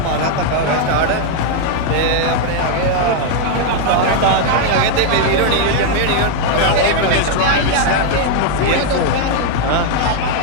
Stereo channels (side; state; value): both; different; correlation 0.00